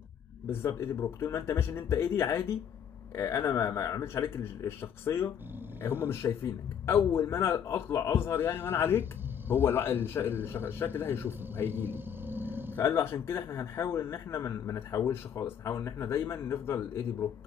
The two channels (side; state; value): right; quieter; 8.4 dB